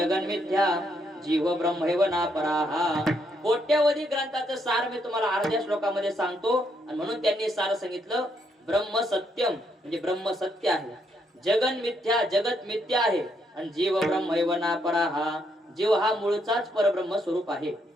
मिथ्या जीव ब्रह्मैव नापराः. कोट्यावधी ग्रंथाचं सार मी तुम्हाला अर्ध्या श्लोकामध्ये सांगतो. आणि म्हणून त्यांनी सार सांगितलं, ब्रह्म सत्यम म्हणजे ब्रह्म सत्य आहे, जगन मिथ्या जगत मिथ्या आहे, आणि जीव ब्रह्मैव नापराः जीव हा मूळचाच परब्रह्म स्वरूप आहे.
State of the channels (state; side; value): normal; both; correlation 0.75